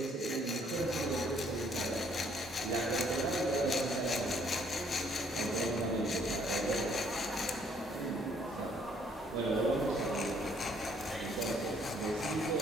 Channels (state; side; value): normal; both; correlation 0.65